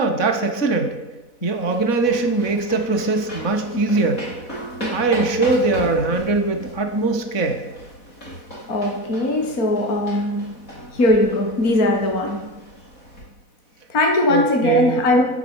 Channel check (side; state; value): right; late; 4.1 ms